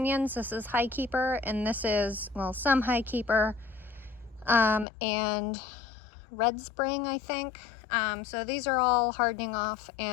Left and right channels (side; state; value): right; drops out; at 4.9 s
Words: This is High Keeper, and this is, well, some High Keeper, and Red Spring, I think. So these are all hardening off